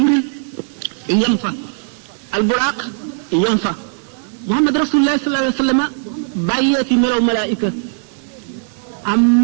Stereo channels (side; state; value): left; silent; 60 dB below the other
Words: yem fa alburaax yem fa Muhammad rasulullah sallallahu alayhi wa sallam bàyyee fi melow malaayika am